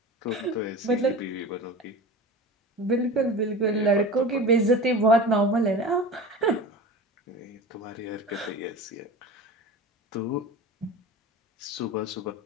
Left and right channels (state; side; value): normal; both; correlation 0.33